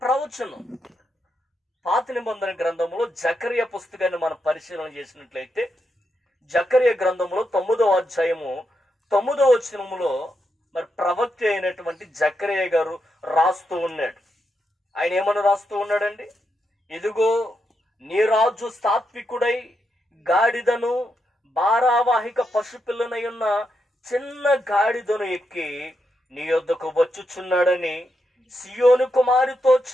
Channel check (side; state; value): both; normal; correlation 0.83